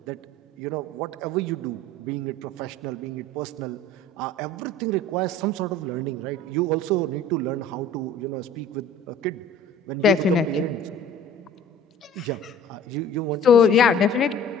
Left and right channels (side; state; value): both; normal; correlation 0.47